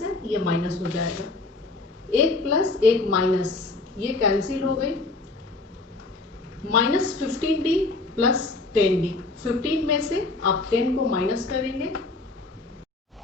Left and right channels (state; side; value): quieter; right; 3.3 dB